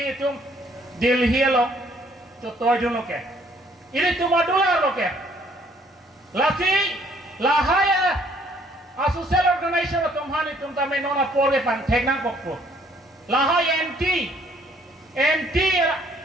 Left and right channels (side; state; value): both; normal; correlation 0.62